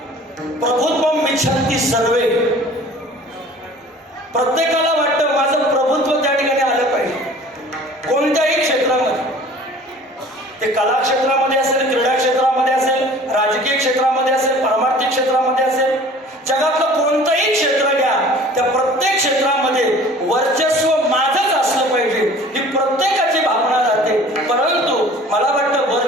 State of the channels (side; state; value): both; normal; correlation 0.47